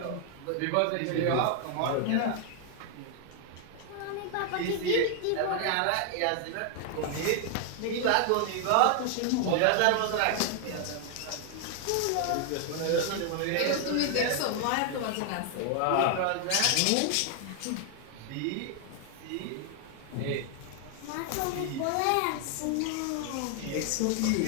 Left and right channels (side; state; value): both; different; correlation 0.00